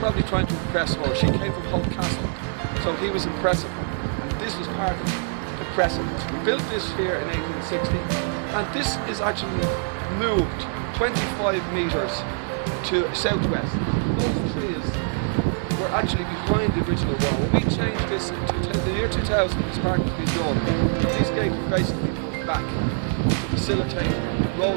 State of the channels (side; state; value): left; silent; 62 dB below the other